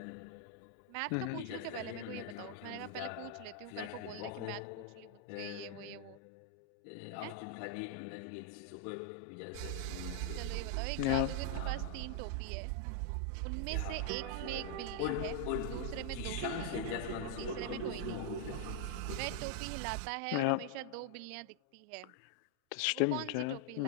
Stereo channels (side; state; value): both; different; correlation 0.00